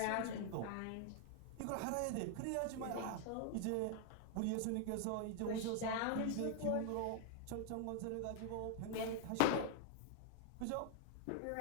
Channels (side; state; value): both; different; correlation 0.00